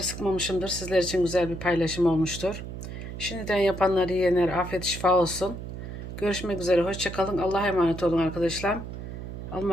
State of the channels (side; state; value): right; noise; hum, 9 dB below the sound